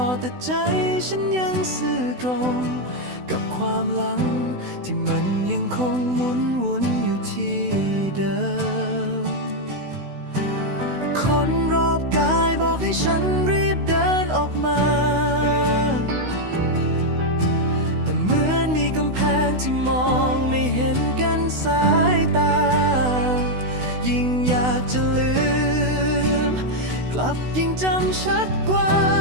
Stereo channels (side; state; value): left; late; 16 ms